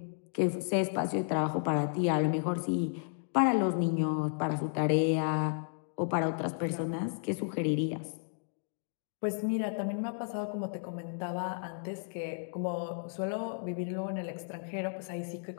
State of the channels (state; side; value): silent; right; digital silence